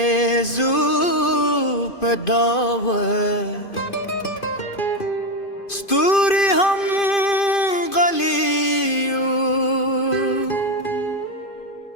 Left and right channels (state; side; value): late; right; 2.5 ms